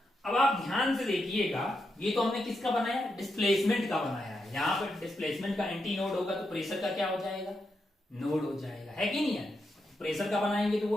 अब आप ध्यान से देखिएगा, ये तो हमने किसका बनाया, डिस्प्लेसमेंट का बनाया है। यहाँ पर डिस्प्लेसमेंट का एंटी नोड होगा तो प्रेशर का क्या हो जाएगा, नोड हो जाएगा, है कि नहीं है? प्रेशर का बनाएंगे तो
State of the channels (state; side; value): normal; both; correlation 0.84